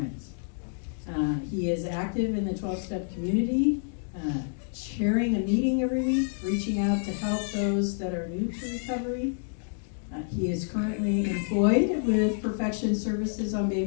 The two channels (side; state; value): right; silent; digital silence